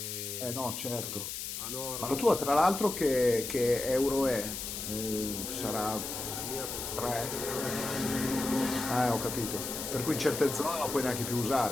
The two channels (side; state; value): left; noise; hiss, 5 dB below the sound